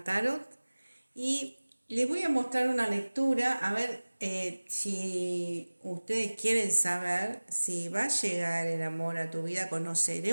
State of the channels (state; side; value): inverted; both; correlation -1.00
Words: Tarot y les voy a mostrar una lectura a ver si ustedes quieren saber si va a llegar el amor a tu vida, conoceré